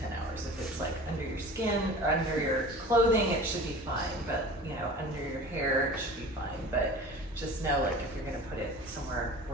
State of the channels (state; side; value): normal; both; correlation 0.39